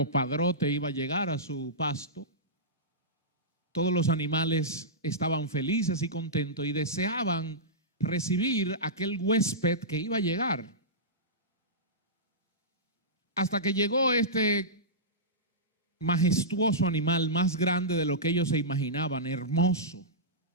padrote iba a llegar a su pasto. Todos los animales estaban felices y contentos y deseaban recibir aquel huésped que iba a llegar. Hasta que llegó este majestuoso animal, más grande de lo que ellos se imaginaban, hermoso.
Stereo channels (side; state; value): both; normal; correlation -0.15